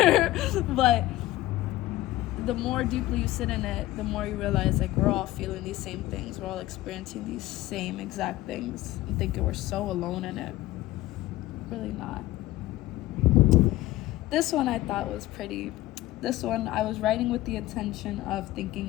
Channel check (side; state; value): right; quieter; 16.4 dB